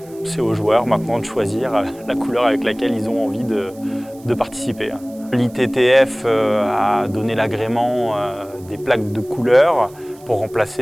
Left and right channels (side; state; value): right; noise; hiss, 25 dB below the sound